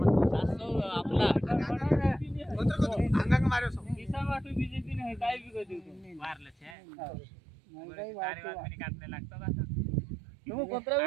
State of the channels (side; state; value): left; drops out; at 6.8 s